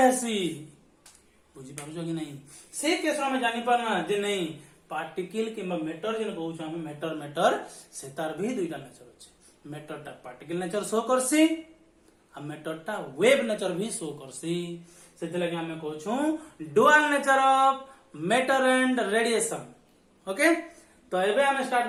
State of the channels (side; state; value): both; identical; correlation 1.00